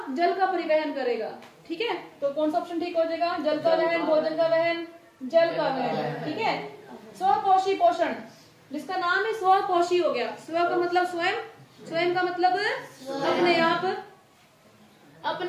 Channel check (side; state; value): both; identical; correlation 1.00